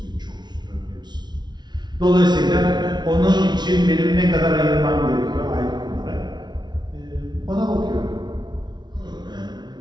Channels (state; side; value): late; left; 0.20 ms